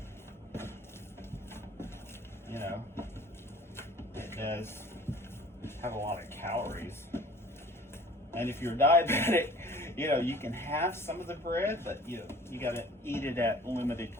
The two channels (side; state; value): both; normal; correlation 0.48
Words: it does have a lot of calories. And if you're diabetic, you can have some of the bread, but you got to eat it at limited